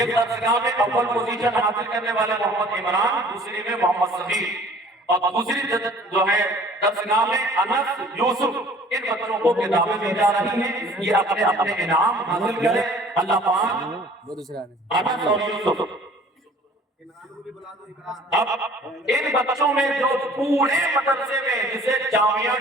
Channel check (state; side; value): normal; both; correlation 0.51